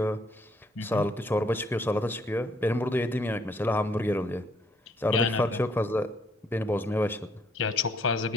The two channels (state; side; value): normal; both; correlation 0.67